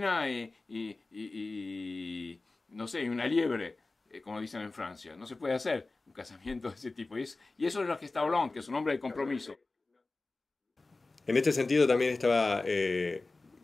y no sé, una liebre, como dicen en Francia. No se puede hacer un casamiento de ese tipo. Y eso es lo que está Hollande, que es un hombre de compromiso. En este sentido también estaba,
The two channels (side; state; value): right; quieter; 3.4 dB